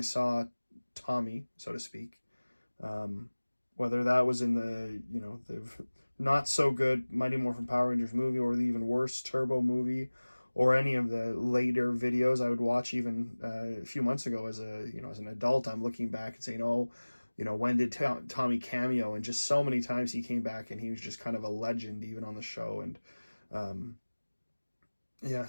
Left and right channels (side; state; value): both; inverted; correlation -1.00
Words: saw Tommy, so to speak, whether that was in the not so good Mighty Morphin Power Rangers movie or the even worse Turbo movie, or any of the later videos I would watch even a few months ago as an adult, I'm looking back and saying, oh, when did Tommy cameo? And just so many times he came back and he was just kind of a legend even on the show. And yeah,